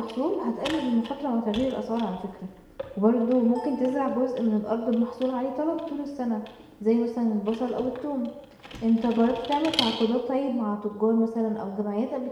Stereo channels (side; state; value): both; identical; correlation 1.00